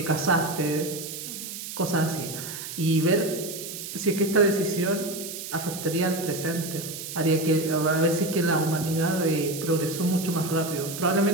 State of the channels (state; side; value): noise; right; hiss, 9 dB below the sound